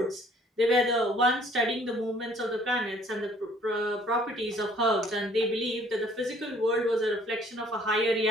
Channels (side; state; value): both; normal; correlation 0.58